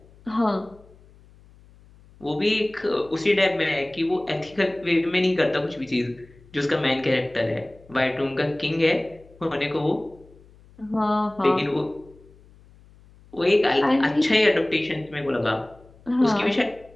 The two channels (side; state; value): left; noise; hum, 26 dB below the sound